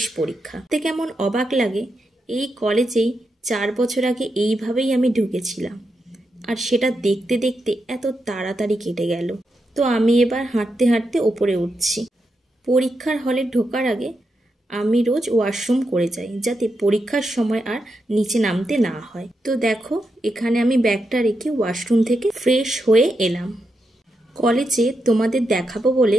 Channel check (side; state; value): both; normal; correlation 0.85